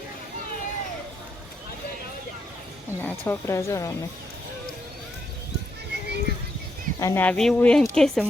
અને આ છોકરા જો રમે અને આ વ્યૂ એમ કહે છે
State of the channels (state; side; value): normal; both; correlation 0.79